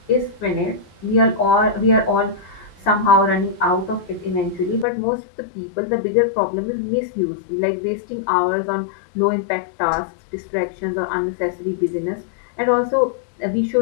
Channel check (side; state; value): right; drops out; at 4.9 s